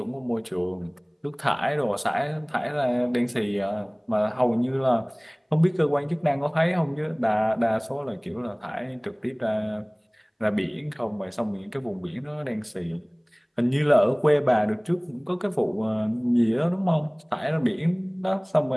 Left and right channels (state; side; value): identical; both; correlation 1.00